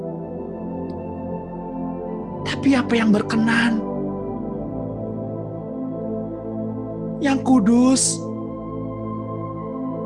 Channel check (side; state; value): both; identical; correlation 1.00